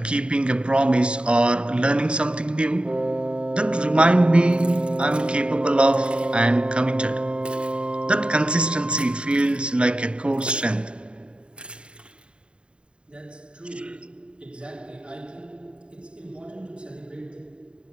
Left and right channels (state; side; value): late; left; 0.053 ms